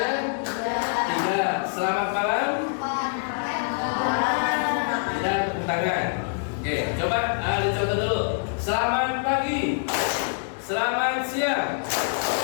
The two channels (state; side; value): silent; right; digital silence